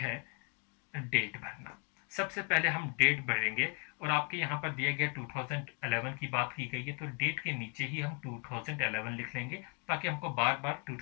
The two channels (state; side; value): quieter; right; 36.9 dB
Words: डेट भरना। सबसे पहले हम डेट भरेंगे, और आपके यहाँ पर दिया गया 2011 की बात की गई है, तो डेट के नीचे ही हम 2011 लिख लेंगे, ताकि हमको बार बार